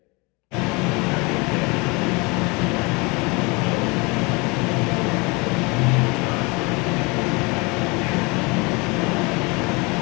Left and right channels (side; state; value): right; quieter; 27.5 dB